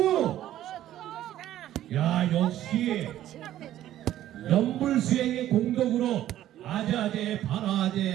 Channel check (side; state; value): left; quieter; 12.8 dB